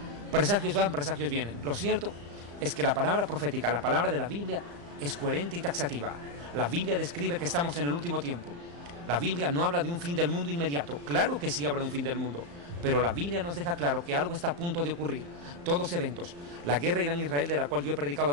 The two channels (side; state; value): left; late; 35 ms